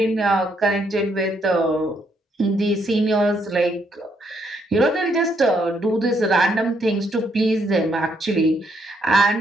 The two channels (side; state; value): both; normal; correlation 0.73